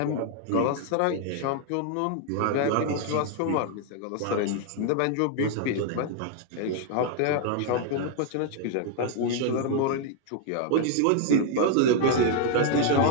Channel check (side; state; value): both; different; correlation 0.00